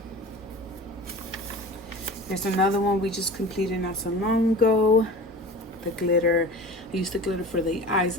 Here's another one we just completed not so long ago. The glitter. I used the glitter for the eyes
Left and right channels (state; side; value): normal; both; correlation 0.37